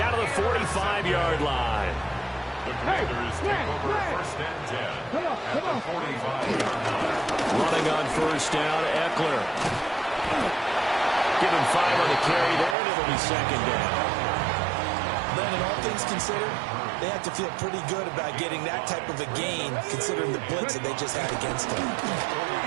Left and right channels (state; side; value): drops out; left; at 12.8 s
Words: to the 45-yard line. The Commanders take over 1st and 10 at the 45-yard line. Running on 1st down, Eckler. Give him 5 on the carry there, and it'll be 2nd down. Then, in all things considered, they have to feel pretty good about getting that type of a gain, considering the blitz that they just had against them.